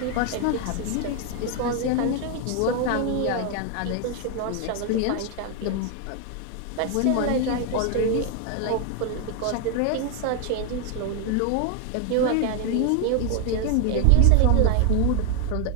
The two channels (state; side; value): different; both; correlation 0.00